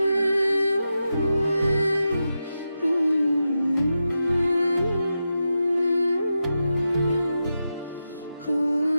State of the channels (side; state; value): both; inverted; correlation -0.89